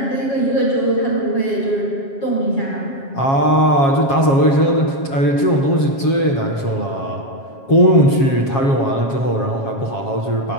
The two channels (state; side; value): late; right; 7.3 ms